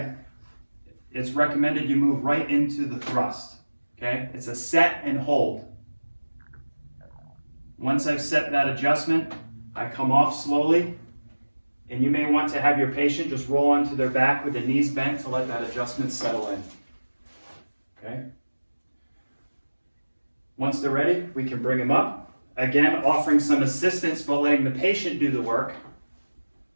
it's recommended you move right into the thrust, okay? It's a set and hold. Once I've set that adjustment, I come off slowly, and you may want to have your patient just roll onto their back with the knees bent to let that adjustment settle in, okay? Once they're ready, we can bring them up. Again, offering some assistance, but letting the patient do the work.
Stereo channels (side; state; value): both; inverted; correlation -1.00